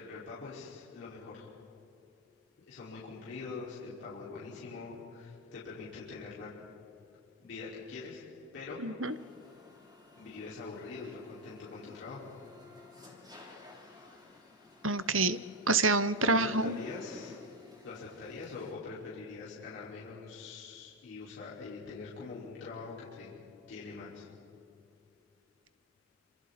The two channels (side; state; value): both; normal; correlation 0.04